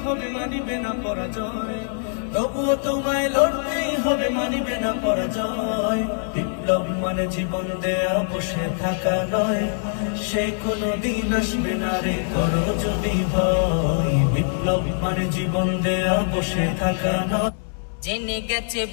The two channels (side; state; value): right; silent; digital silence